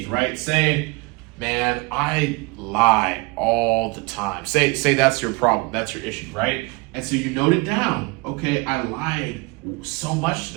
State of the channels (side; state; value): left; quieter; 27.0 dB